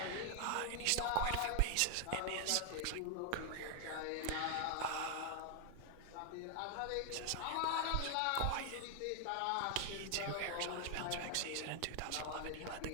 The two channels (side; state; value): both; different; correlation 0.00